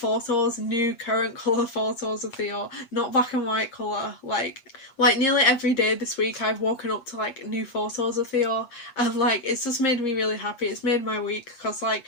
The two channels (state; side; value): late; right; 8.5 ms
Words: new current colour photos of Theo, not black and white colour. Like nearly every day this week I've woken up to like new photos of Theo, and like it's just made me really happy. It's made my week because like